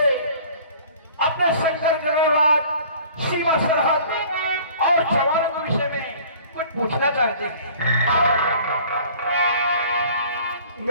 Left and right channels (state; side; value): inverted; both; correlation -0.49